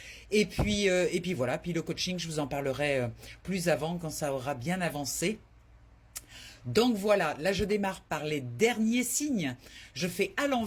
Et puis voilà, puis le coaching, je vous en parlerai plus avant quand ça aura bien avancé. Donc voilà, là je démarre par les derniers signes. Je fais à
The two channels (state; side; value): identical; both; correlation 1.00